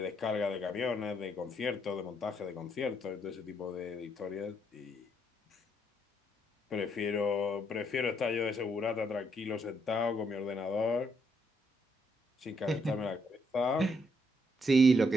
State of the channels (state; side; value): normal; both; correlation 0.73